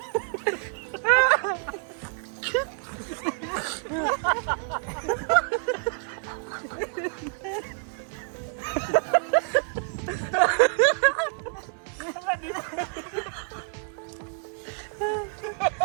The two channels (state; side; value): silent; left; 57 dB below the other